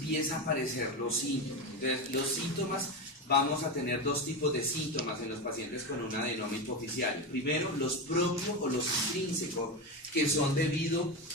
a aparecer los síntomas. Entonces, los síntomas, vamos a tener dos tipos de síntomas en los pacientes con un adenoma hipoficial. Primero, los propios o los intrínsecos, que son debido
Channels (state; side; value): normal; both; correlation 0.17